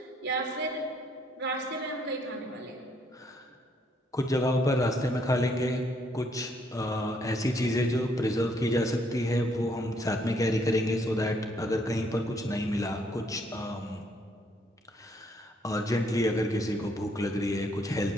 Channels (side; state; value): both; normal; correlation 0.69